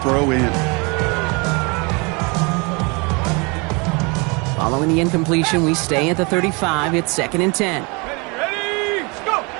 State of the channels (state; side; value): quieter; left; 29.6 dB